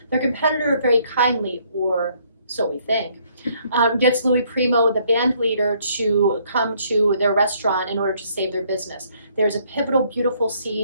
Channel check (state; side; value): inverted; both; correlation -0.66